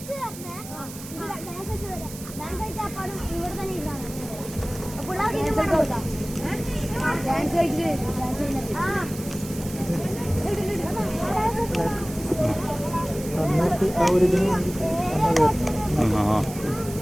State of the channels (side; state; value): right; noise; hiss, 14 dB below the sound